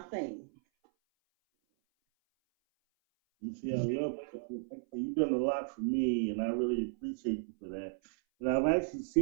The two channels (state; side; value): silent; left; 55 dB below the other